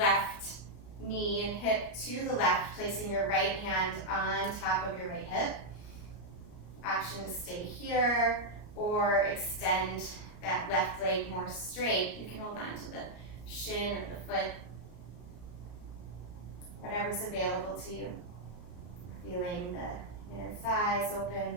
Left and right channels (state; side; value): late; right; 33 ms